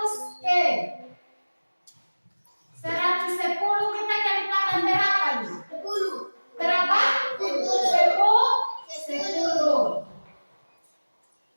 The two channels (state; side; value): inverted; both; correlation -1.00